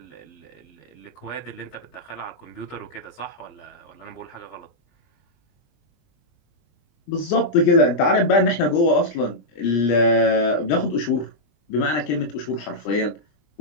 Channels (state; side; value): late; right; 20 ms